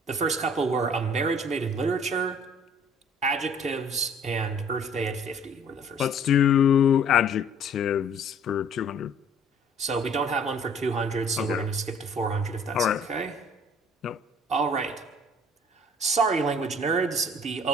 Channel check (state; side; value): normal; both; correlation 0.55